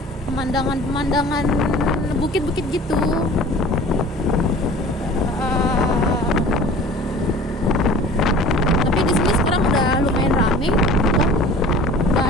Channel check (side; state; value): both; normal; correlation 0.44